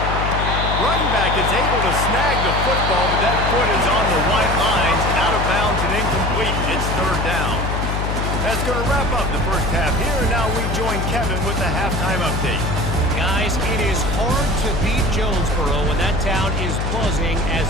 Running back is able to snag the football, but that foot is on the white lines, out of bounds and incomplete. It's third down. That's going to wrap up the first half here, and now we join Kevin with the halftime update. Guys, it is hard to beat Jonesboro when that town is buzzing as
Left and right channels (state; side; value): noise; left; hum, 1 dB below the sound